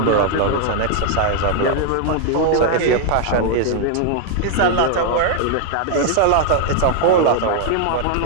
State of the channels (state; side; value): different; both; correlation 0.00